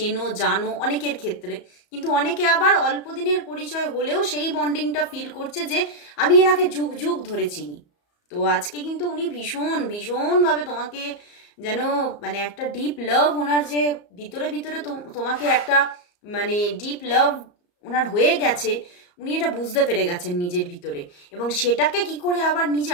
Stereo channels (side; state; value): right; late; 34 ms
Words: জানো অনেকের ক্ষেত্রে, কিন্তু অনেকে আবার অল্প দিনের পরিচয় হলেও সেই বন্ডিংটা ফিল করছে যে আমি এনাকে যুগ যুগ ধরে চিনি। তো আজকে কিন্তু উনি ভীষণভাবে তোমাকে যেন মানে একটা ডিপ লাভ, ওনার যে ভিতরে ভিতরে তোমাকে একটা মানে ডিপ লাভ ওনার হয়ে গেছে, উনি এটা বুঝতে পেরে গেছেন নিজের ভিতরে, এবং সেটাকে কি করে আবার নিজে